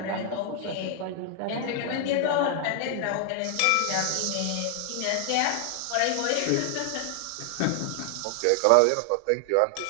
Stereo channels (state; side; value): different; both; correlation 0.00